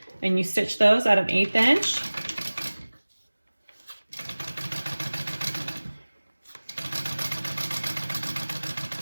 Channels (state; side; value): inverted; both; correlation -1.00